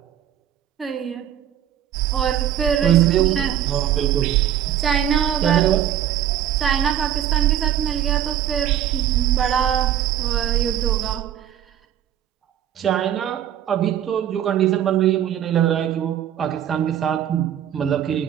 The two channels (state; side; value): quieter; left; 10.6 dB